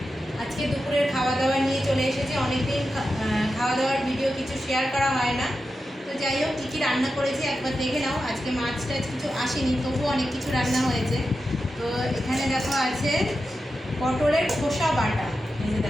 আজকে দুপুরের খাওয়া দাওয়া নিয়ে চলে এসেছি। অনেকদিন খাওয়া দাওয়ার ভিডিও কিছু শেয়ার করা হয় না। তো যাই হোক, কী কী রান্না করেছি একবার দেখে নাও। আজকে মাছ টাছ কিছু আসেনি, তবুও অনেক কিছু রান্না হয়েছে। তো এখানে দেখো আছে পটলের খোসা বাটা। এই যে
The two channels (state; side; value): normal; both; correlation 0.90